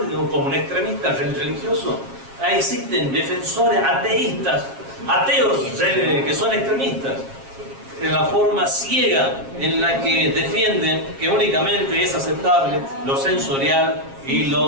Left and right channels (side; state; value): left; late; 7.4 ms